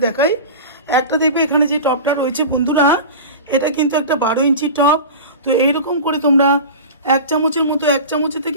দেখাই। একটা দেখবে এখানে যে টবটা রয়েছে বন্ধুরা, এটা কিন্তু একটা 12 ইঞ্চি টব। তো এইরকম করে তোমরা 1 চামচের মতো, 1 চামচের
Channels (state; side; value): inverted; both; correlation -0.31